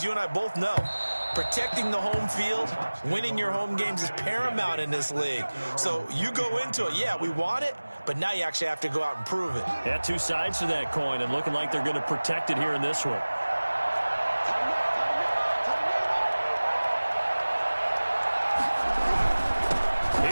you and I both know protecting the home field, winning your home games is paramount in this league. So you go into it, yeah, we want it, but now you actually have to go out and prove it. Yeah, 2 sides to that coin, and looking like they're going to protect it here in this one.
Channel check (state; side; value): inverted; both; correlation -1.00